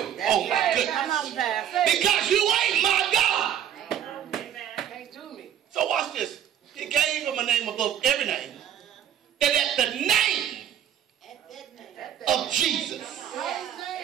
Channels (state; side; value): quieter; left; 10.1 dB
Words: Oh my goodness. Because you ain't my God. Can't do me. So watch this. He gave him a name above every name. That at the name of Jesus,